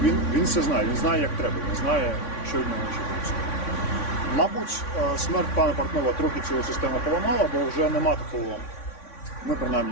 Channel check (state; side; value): late; right; 3.6 ms